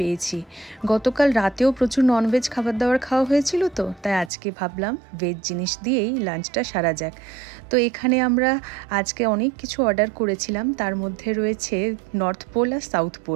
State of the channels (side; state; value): left; drops out; at 4.3 s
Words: গতকাল রাতেও প্রচুর ননভেজ খাবার দাবার খাওয়া হয়েছিল, তো তাই আজকে ভাবলাম ভেজ জিনিস দিয়েই লাঞ্চটা সারা যাক। তো এখানে আমরা আজকে অনেক কিছু অর্ডার করেছিলাম, তার মধ্যে রয়েছে নর্থ পোল আর সাউথ